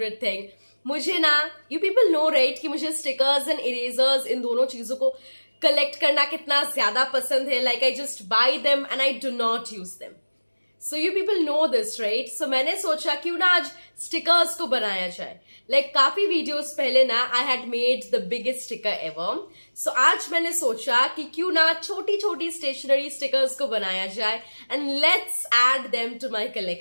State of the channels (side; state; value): both; inverted; correlation -1.00